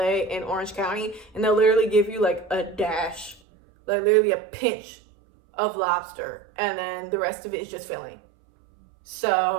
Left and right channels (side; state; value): left; drops out; at 3.4 s